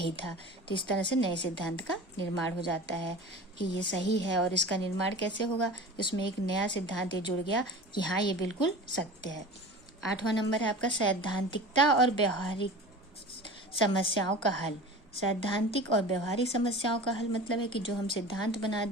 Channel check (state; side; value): normal; both; correlation 0.36